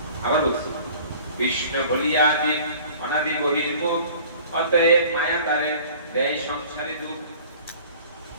আবার বলছি, কৃষ্ণ ভুলিয়া আদি অনাদি বহির্মুখ, অতএব মায়া তারে দেয় সংসারী দুঃখ।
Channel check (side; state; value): both; inverted; correlation -0.47